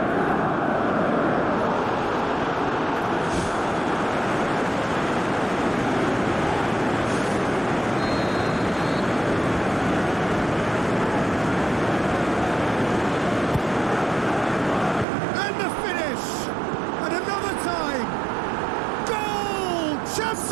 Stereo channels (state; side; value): drops out; left; at 15.1 s